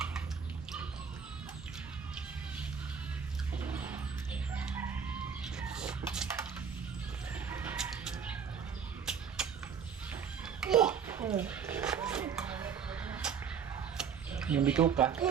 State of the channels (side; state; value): left; quieter; 6.9 dB